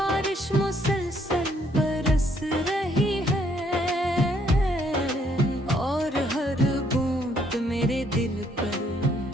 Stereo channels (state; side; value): normal; both; correlation 0.68